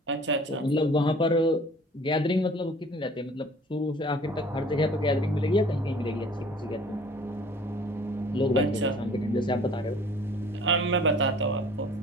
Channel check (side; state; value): both; normal; correlation 0.50